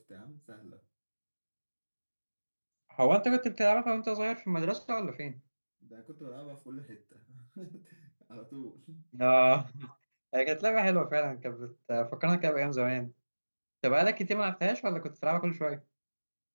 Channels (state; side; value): inverted; both; correlation -1.00